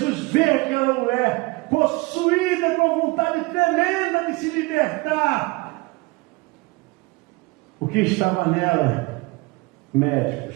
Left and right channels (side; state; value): left; quieter; 24.4 dB